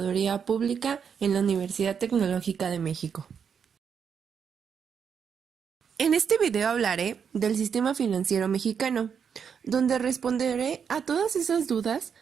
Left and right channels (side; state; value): left; quieter; 7.0 dB